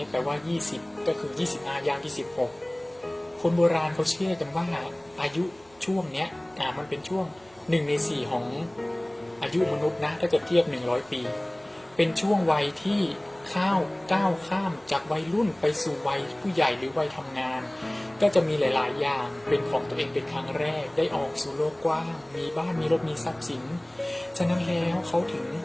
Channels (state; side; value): noise; right; hum, 30 dB below the sound